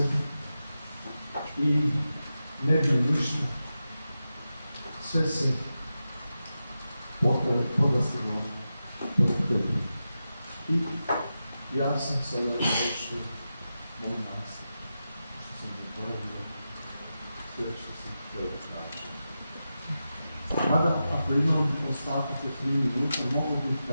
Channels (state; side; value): inverted; both; correlation -0.91